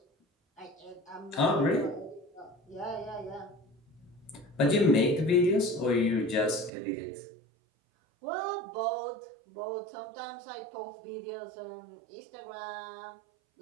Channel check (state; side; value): drops out; left; at 6.7 s